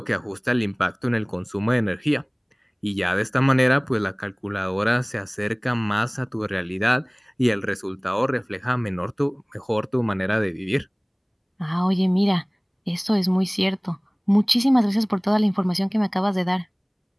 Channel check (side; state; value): both; identical; correlation 1.00